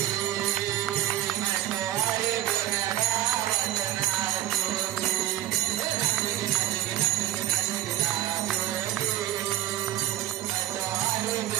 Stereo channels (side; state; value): left; quieter; 13.5 dB